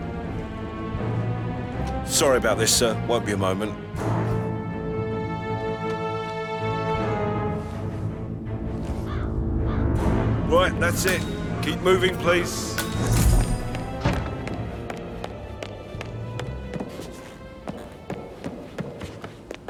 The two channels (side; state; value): both; identical; correlation 1.00